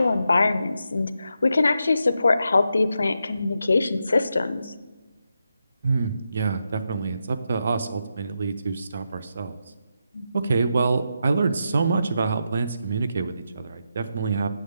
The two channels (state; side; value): inverted; both; correlation -0.85